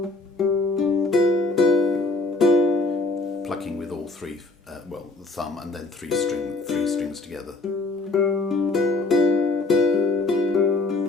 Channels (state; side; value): quieter; right; 3.3 dB